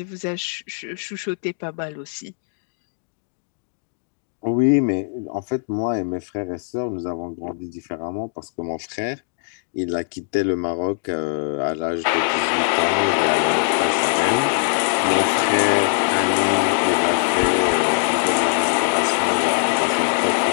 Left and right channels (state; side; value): silent; right; digital silence